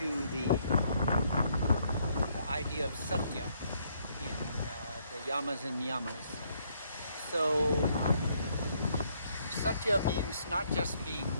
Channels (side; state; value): both; inverted; correlation -0.70